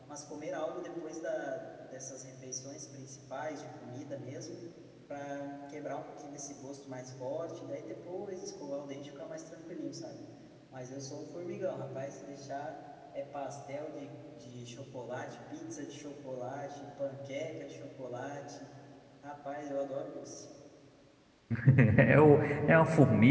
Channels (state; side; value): identical; both; correlation 1.00